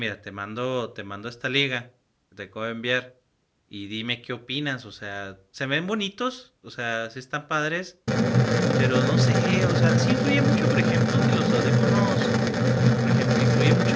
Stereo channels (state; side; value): identical; both; correlation 1.00